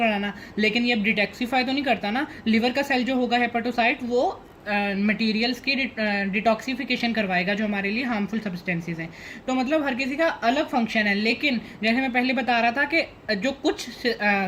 लेकिन ये डिटॉक्सिफाई तो नहीं करता ना। लिवर का सेल जो होगा हेपेटोसाइट, वो मटेरियल्स की डिटॉक्सिफिकेशन करवाएगा जो हमारे लिए हार्मफुल सब्सटेंसेस हैं। तो मतलब हर किसी का अलग फंक्शन है। लेकिन जैसे मैं पहले बता रहा था कि जो कुछ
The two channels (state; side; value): identical; both; correlation 1.00